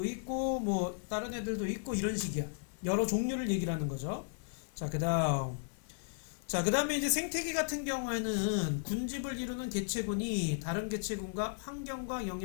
있고 뭐 다른 애들도 있고 이런 식이야. 여러 종류를 얘기를 하는 거죠. 자, 그 다음에 이제 생태계 같은 경우에는 군집을 이루는 개체군이 다른 개체군과 환경과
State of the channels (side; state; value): right; silent; 54 dB below the other